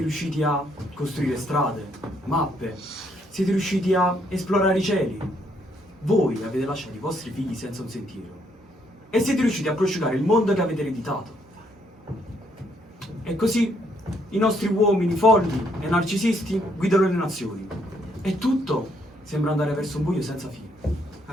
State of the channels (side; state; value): both; normal; correlation 0.71